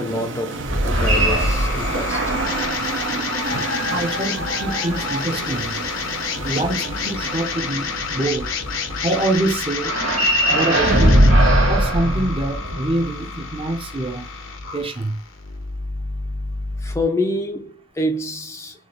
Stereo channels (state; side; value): normal; both; correlation 0.53